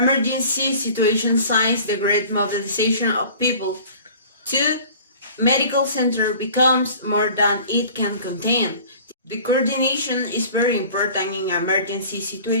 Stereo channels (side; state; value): both; inverted; correlation -0.45